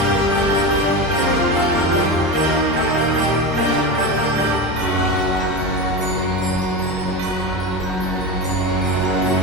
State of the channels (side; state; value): both; normal; correlation 0.22